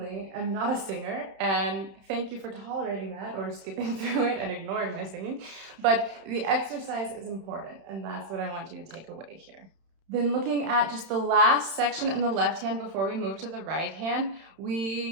am not a singer, and thank you for tolerating that or skipping through it and ignoring my singing. But the exercise is important, and that's what I want you to take away here. Then looking at just the last section in the left hand before we move to the right hand,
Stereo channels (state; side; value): late; left; 31 ms